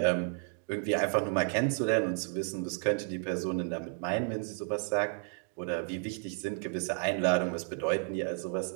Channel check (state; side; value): silent; left; 56 dB below the other